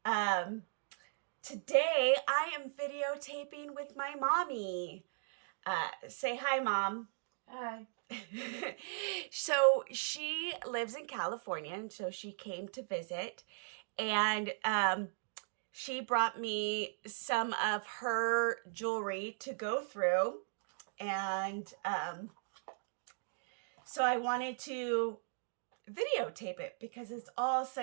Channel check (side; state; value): left; silent; digital silence